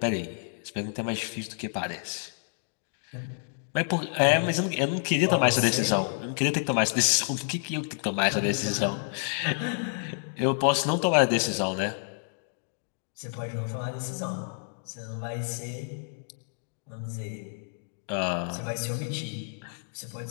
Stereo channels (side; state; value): right; silent; digital silence